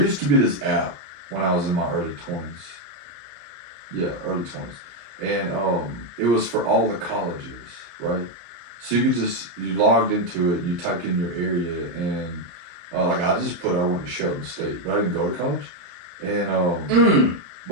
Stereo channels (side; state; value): left; late; 34 ms